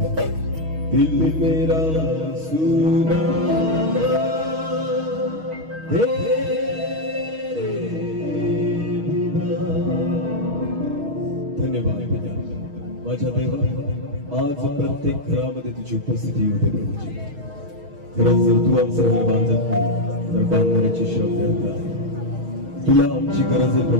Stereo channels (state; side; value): late; left; 6.4 ms